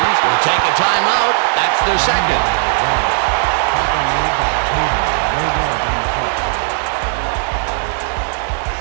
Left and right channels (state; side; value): silent; left; 60 dB below the other